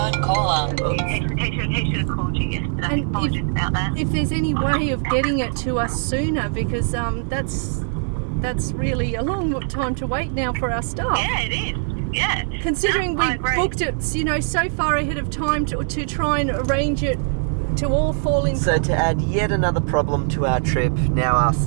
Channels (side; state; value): left; silent; 65 dB below the other